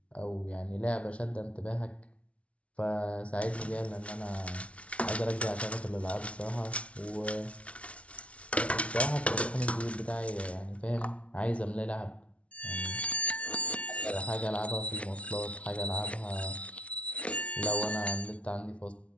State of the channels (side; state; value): right; late; 0.063 ms